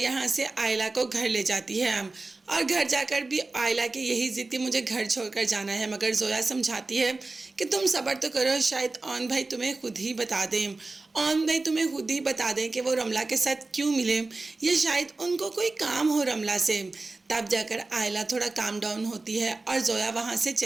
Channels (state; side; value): quieter; left; 3.4 dB